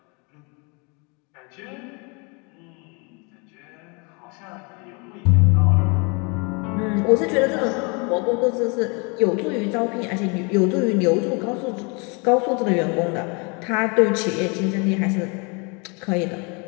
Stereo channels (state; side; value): quieter; right; 31.9 dB